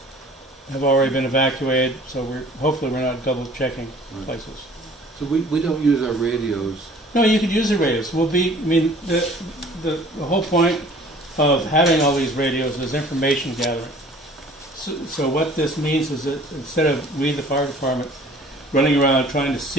have already been evacuated, so hopefully we're not double checking places. So we don't use our radios. No, you could use the radios. The whole point of having all these radios is information gathering. So what this means is that instead of we, the fire department, running around trying to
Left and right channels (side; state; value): both; normal; correlation 0.51